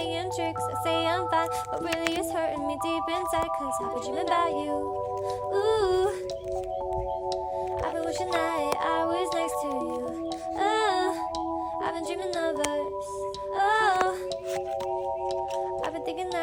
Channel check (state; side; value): identical; both; correlation 1.00